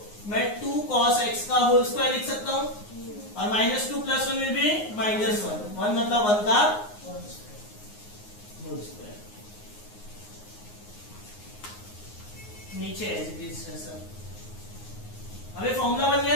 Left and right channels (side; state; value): right; late; 9.6 ms